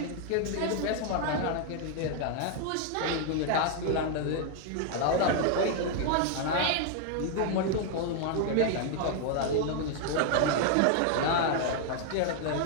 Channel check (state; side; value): different; both; correlation 0.00